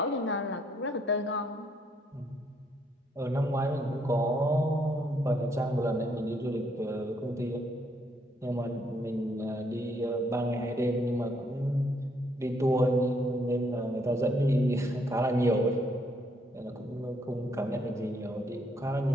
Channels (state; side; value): normal; both; correlation 0.71